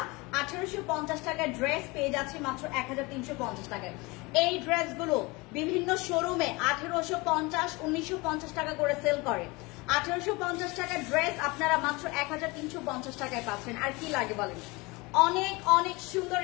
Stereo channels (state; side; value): quieter; right; 24.8 dB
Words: 1850 টাকায় ড্রেস পেয়ে যাচ্ছি মাত্র 1350 টাকায়। এই ড্রেসগুলো বিভিন্ন শোরুমে 1850, 1950 টাকা করে সেল করে। 1850 টাকার ড্রেস আপনারা মাত্র 1350 টাকায় পাচ্ছেন। আর কি লাগে বলেন? অনেক অনেক সুন্দর